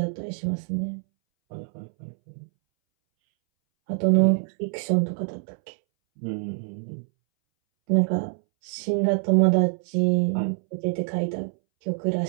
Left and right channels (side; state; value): left; silent; 62 dB below the other